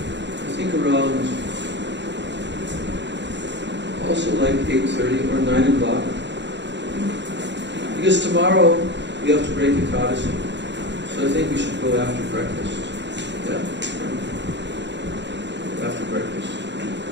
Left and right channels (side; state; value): left; late; 0.52 ms